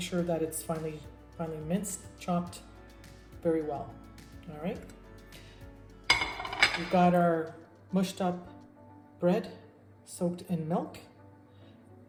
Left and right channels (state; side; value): identical; both; correlation 1.00